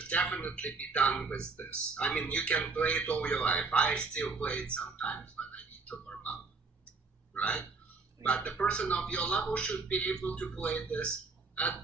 definitely be done with this. I mean, you can play it all your life. I still play it sometimes, but I need to warm up, right? But the person of your level should be able to play this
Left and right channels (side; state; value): left; quieter; 4.2 dB